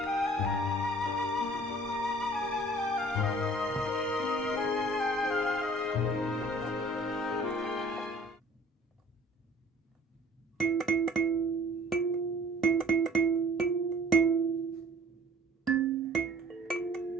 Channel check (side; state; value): both; normal; correlation 0.51